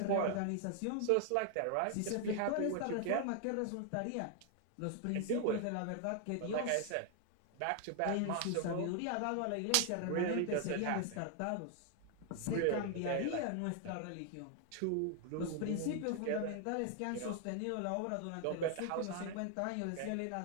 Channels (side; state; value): both; different; correlation 0.00